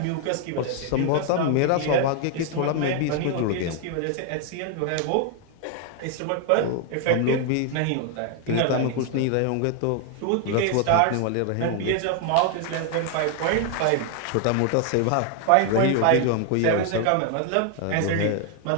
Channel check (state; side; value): different; both; correlation 0.00